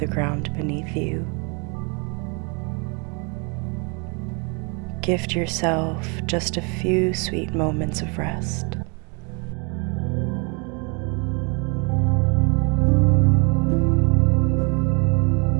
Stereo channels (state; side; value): quieter; left; 33.0 dB